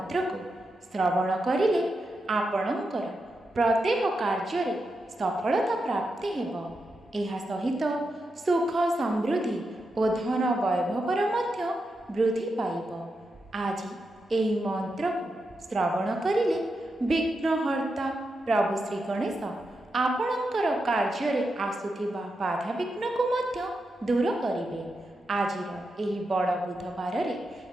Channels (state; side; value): normal; both; correlation 0.87